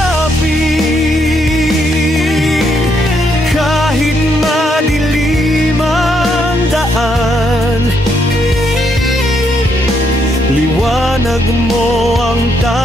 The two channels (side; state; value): both; normal; correlation 0.75